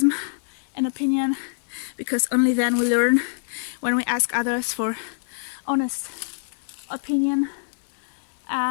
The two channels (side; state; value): right; silent; digital silence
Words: and opinion, because only then we learn. When we ask others for honest opinion,